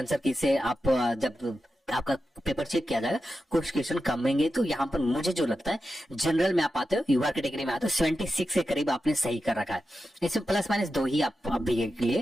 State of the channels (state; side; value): normal; both; correlation 0.90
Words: की से आप जब आपका पेपर चेक किया जाएगा, कुछ क्वेश्चन कम होंगे, तो यहाँ पर मुझे जो लगता है, जनरल में आप आते हो, यूआर कैटेगरी में आते हो, 76 के करीब आपने सही कर रखा है। इसमें प्लस माइनस 2 ही आप अभी के